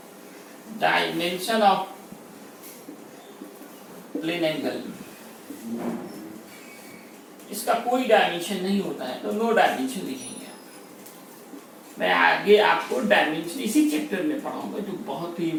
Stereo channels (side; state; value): both; identical; correlation 1.00